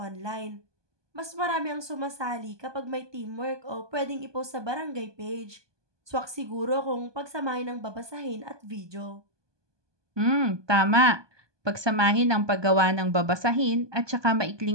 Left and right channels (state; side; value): late; left; 1.2 ms